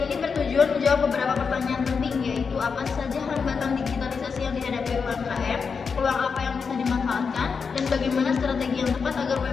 ini bertujuan menjawab beberapa pertanyaan penting, yaitu apa saja hambatan digitalisasi yang dihadapi UMKM, peluang apa yang bisa dimanfaatkan, dan bagaimana strategi yang tepat agar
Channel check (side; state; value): right; quieter; 5.6 dB